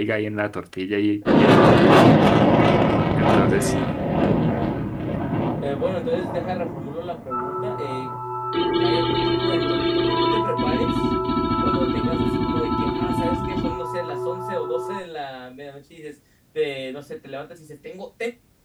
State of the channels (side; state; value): both; identical; correlation 1.00